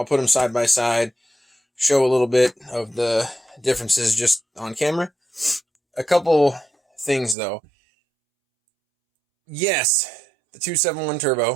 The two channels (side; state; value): left; drops out; at 7.4 s